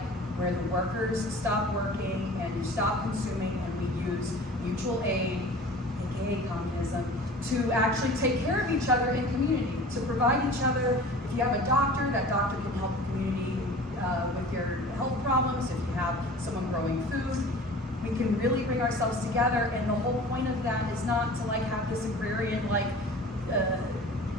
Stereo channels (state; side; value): normal; both; correlation 0.42